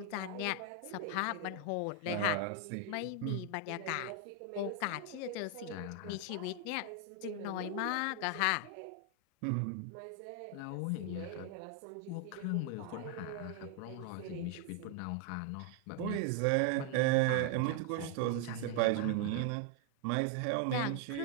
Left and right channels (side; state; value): both; different; correlation 0.00